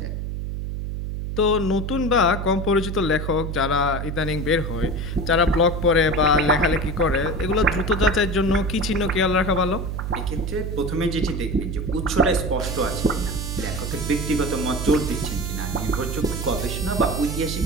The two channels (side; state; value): right; noise; hum, 4 dB below the sound